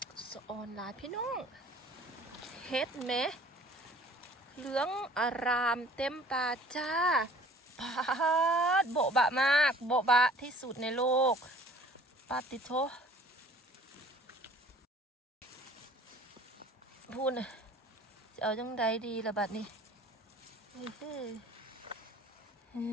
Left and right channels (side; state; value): both; normal; correlation 0.51